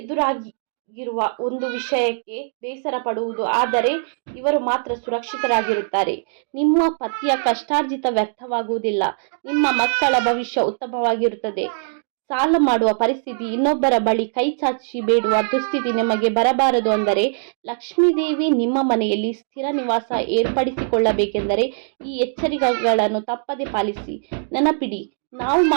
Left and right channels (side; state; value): left; silent; digital silence